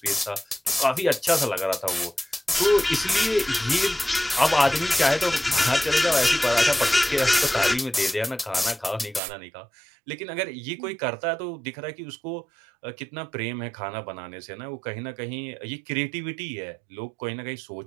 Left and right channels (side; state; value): left; drops out; at 9.2 s